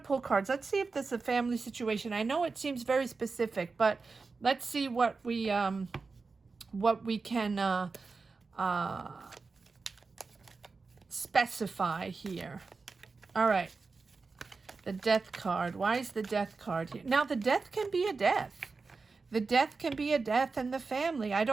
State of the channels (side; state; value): left; quieter; 4.3 dB